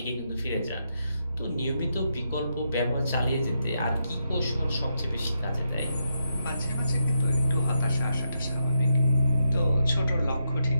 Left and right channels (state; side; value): inverted; both; correlation -0.82